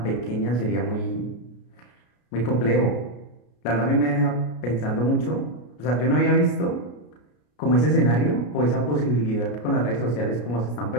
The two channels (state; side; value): late; right; 33 ms